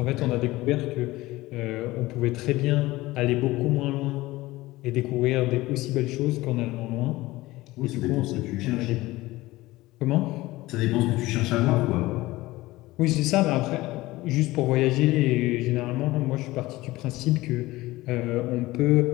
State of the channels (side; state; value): right; quieter; 18.8 dB